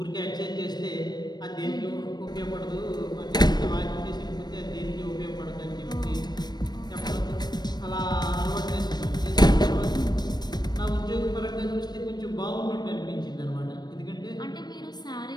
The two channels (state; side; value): late; right; 0.20 ms